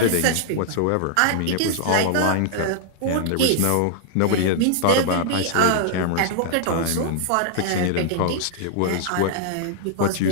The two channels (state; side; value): different; both; correlation -0.01